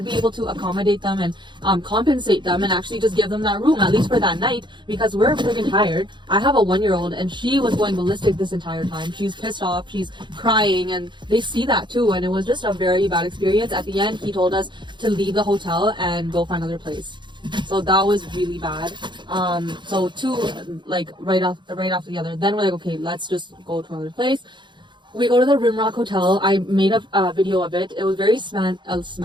be able to accommodate them and compensate them and actually just give them that room, at least for that night, because we're freaking tired. I have a 1-year-old, and she was going ballistic this entire time. She's pissed off, she's crying, and they see that too. And it was just a very bad experience. At the end, he told us to leave the hotel and go find another place. So that was really bad. So two, like right after the other. Then we're like, okay, let's just go to another place. We go to the Rimrock Hotel. I made a video of it. It was very fancy.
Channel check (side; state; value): left; late; 0.23 ms